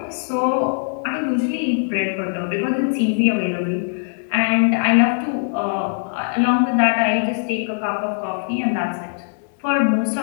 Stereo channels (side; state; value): right; silent; digital silence